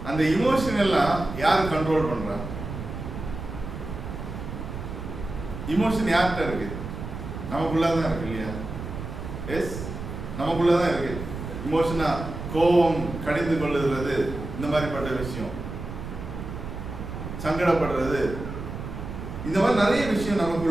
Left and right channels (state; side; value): noise; right; rumble, 8 dB below the sound